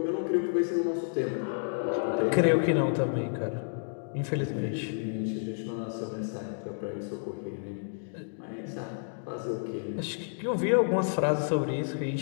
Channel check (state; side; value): silent; right; digital silence